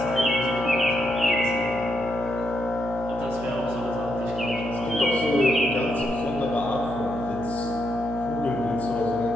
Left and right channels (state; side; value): noise; right; hum, 11 dB below the sound